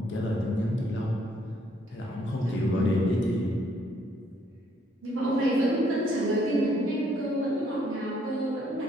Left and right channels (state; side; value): normal; both; correlation 0.68